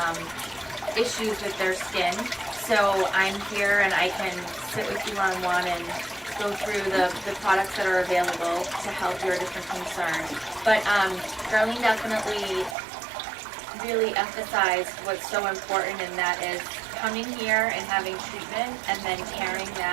issues with their skin. So I'm here and I can sit with you one-on-one and go through the products that are available to help your different concerns. But Darlene definitely really emphasized what's so important, and that is coming here and having treatment and then carrying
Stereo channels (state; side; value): drops out; left; at 12.8 s